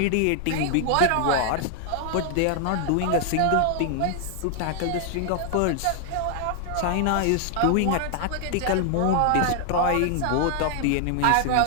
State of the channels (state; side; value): different; both; correlation 0.00